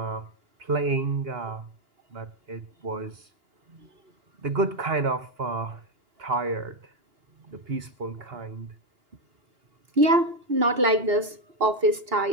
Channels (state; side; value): late; left; 2.9 ms